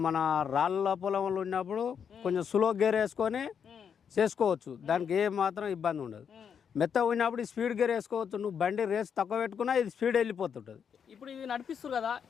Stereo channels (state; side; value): quieter; right; 7.3 dB